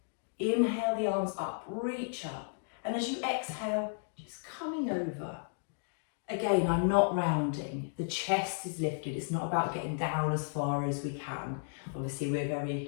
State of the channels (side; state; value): right; silent; digital silence